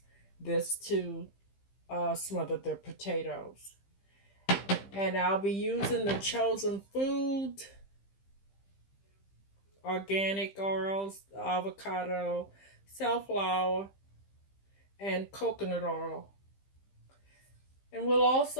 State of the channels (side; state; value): right; late; 15 ms